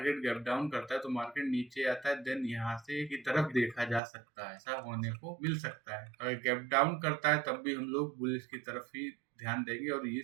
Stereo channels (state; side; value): drops out; left; at 4.0 s